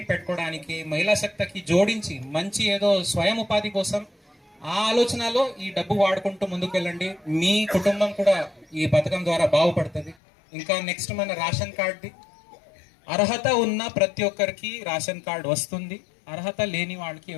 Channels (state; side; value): drops out; right; at 10.2 s